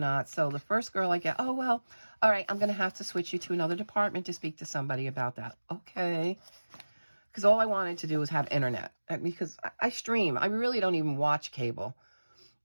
So the first girl I get, oh, well, all right, I'm going to have to switch you to another department to speak to somebody about that. Okay. Because all I wanted to do was have internet. Because I stream. I really don't even watch cable.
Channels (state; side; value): inverted; both; correlation -1.00